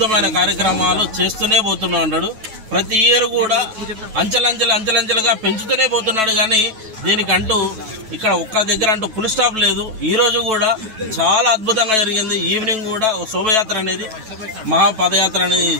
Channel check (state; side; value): late; left; 9.2 ms